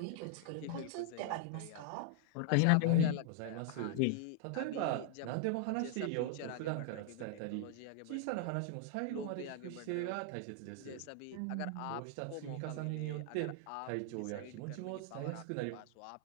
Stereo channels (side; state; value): both; different; correlation 0.00